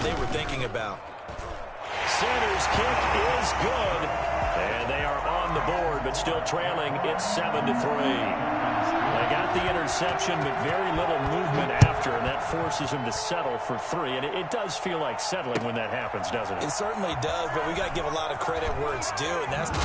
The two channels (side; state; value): both; identical; correlation 1.00